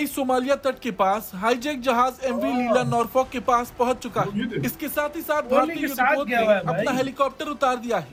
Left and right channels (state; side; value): identical; both; correlation 1.00